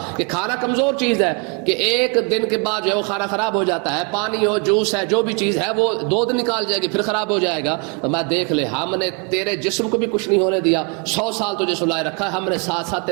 کہ کھانا کمزور چیز ہے کہ ایک دن کے بعد جو ہے وہ کھانا خراب ہو جاتا ہے, پانی ہو جوس ہے جو بھی چیز ہے وہ 2 دن نکال جائے گی پھر خراب ہو جائے گا. تو میں دیکھ لے ہم نے تیرے جسم کو بھی کچھ نہیں ہونے دیا, 100 سال تجھے سلائے رکھا ہے, ہم نے ساتھ ساتھ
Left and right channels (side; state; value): left; quieter; 34.4 dB